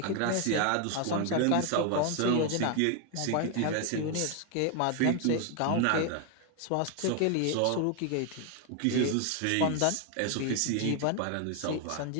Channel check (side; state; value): both; different; correlation 0.01